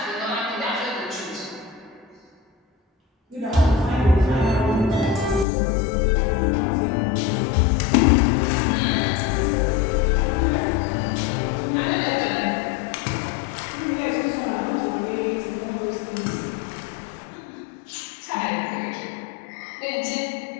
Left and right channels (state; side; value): drops out; right; at 5.5 s